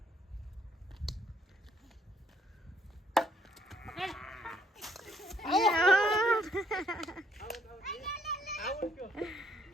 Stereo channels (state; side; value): normal; both; correlation 0.67